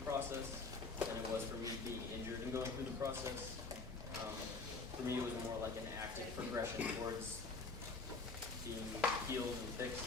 process than it was for me being injured and going through the process. For me, it was more like an active progression towards being healed and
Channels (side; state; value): right; quieter; 4.0 dB